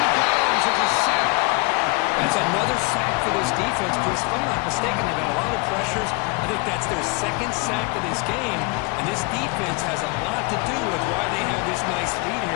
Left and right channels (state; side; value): quieter; right; 28.1 dB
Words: goes. It's a sack. That's another sack for this defense, Chris. If I'm not mistaken, they've got a lot of pressures. I think that's their 2nd sack of this game. And this defense has a lot to do with why they have this nice lead